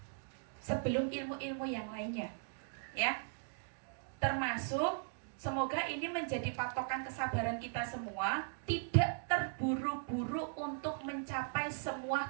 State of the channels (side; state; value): left; silent; digital silence